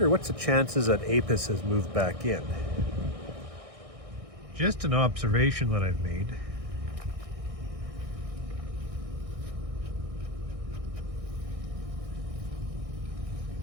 what's the chances that apis has moved back in. Just an observation that I've made.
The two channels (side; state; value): left; late; 1.6 ms